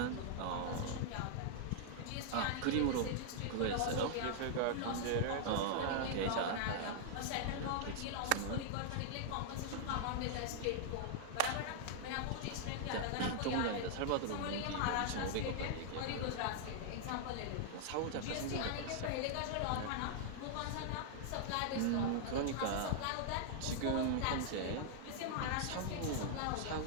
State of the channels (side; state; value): both; different; correlation -0.01